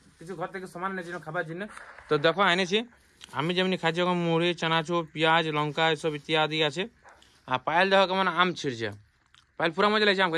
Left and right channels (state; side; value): identical; both; correlation 1.00